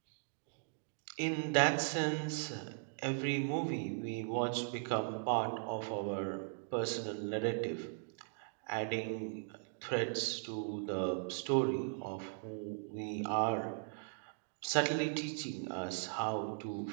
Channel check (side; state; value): left; silent; digital silence